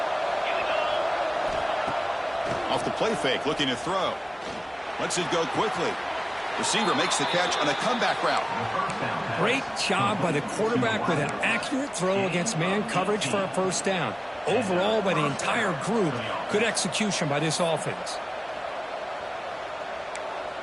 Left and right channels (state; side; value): identical; both; correlation 1.00